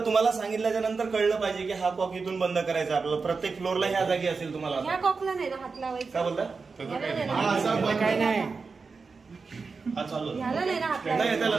तुम्हाला सांगितल्याच्या नंतर कळलं पाहिजे की हा कॉक इथून बंद करायचा आपल्याला. प्रत्येक फ्लोअरला ह्या जागी असेल तुम्हाला. ह्या कॉकला नाही ना हात लावायचा. काय बोलता? ह्याला नाही ना. हा, असा बंद काय नाही हा चालू ह्याला नाही ना हात नाही, लावायचा. त्याला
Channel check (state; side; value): quieter; left; 4.6 dB